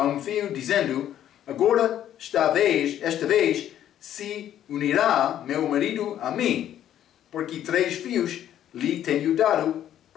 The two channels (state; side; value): quieter; right; 11.1 dB